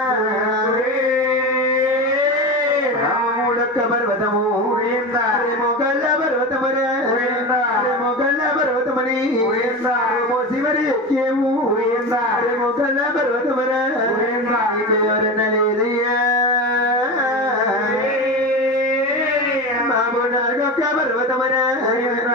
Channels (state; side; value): normal; both; correlation 0.24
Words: మూడొక్క పర్వతము మొగళ్ళ పర్వతముర మొగళ్ళ పర్వతమని శివరి ఎక్కేము మొగళ్ళ పర్వతముర నీకు ఎవరన్నా లేదయ్యా నాగొక్క పర్వతముర